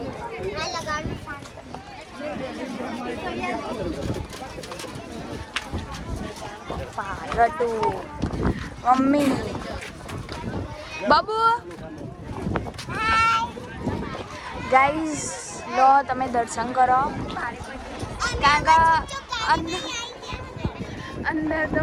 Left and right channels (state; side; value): identical; both; correlation 1.00